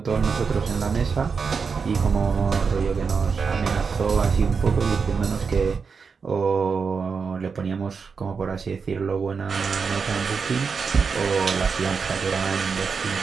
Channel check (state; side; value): quieter; left; 5.5 dB